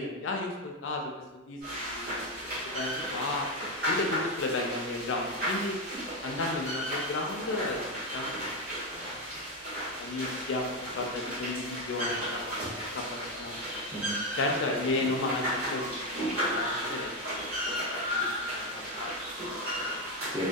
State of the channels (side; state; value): both; normal; correlation 0.09